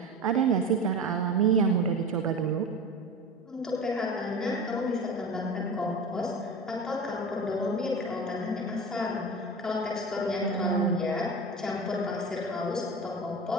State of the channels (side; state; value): both; normal; correlation 0.31